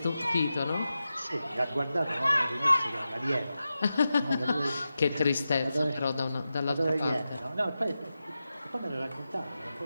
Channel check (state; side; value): inverted; both; correlation -0.92